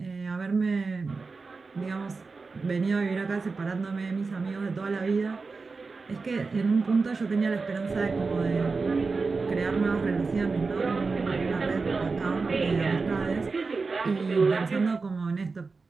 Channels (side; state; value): left; quieter; 4.3 dB